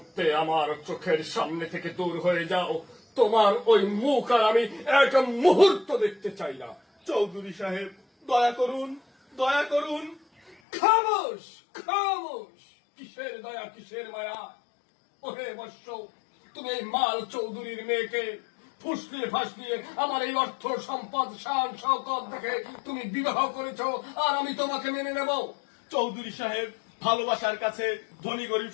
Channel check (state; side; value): drops out; right; at 10.6 s